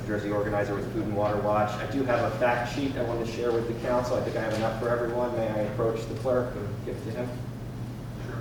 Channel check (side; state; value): both; identical; correlation 1.00